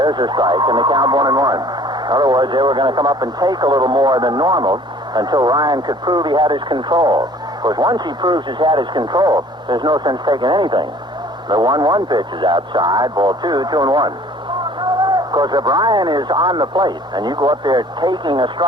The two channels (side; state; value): both; normal; correlation 0.52